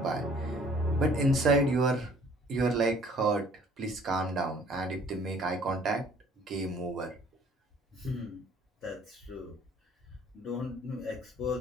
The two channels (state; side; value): normal; both; correlation 0.56